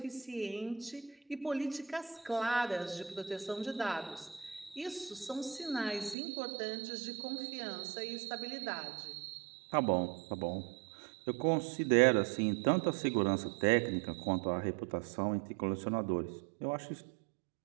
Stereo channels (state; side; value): drops out; left; at 6.2 s